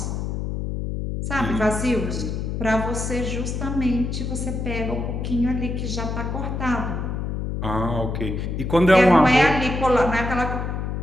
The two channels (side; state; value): left; noise; hum, 3 dB below the sound